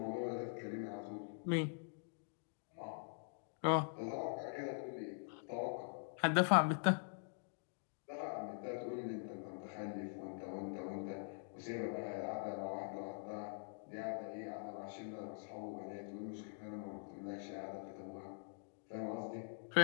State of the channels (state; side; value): silent; right; digital silence